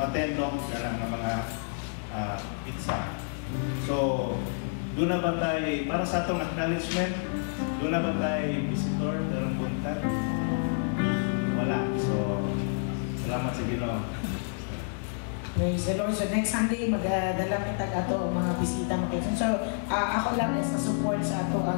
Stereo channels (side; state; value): right; silent; digital silence